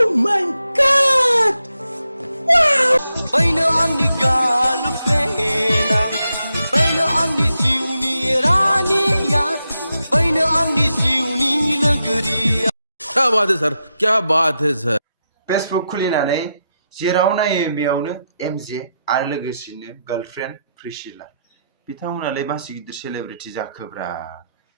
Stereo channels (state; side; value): inverted; both; correlation -0.85